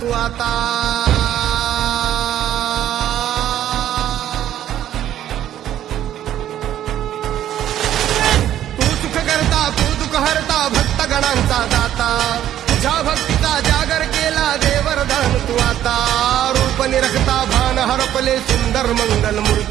आता तू सुख करता तू दुःख हरता भक्तगणांचा दाता तुझ्या भक्तीचा जागर केला दे वरदान तू आता रूप निरखता भान हरपले सुंदर मंगल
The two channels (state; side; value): quieter; left; 11.7 dB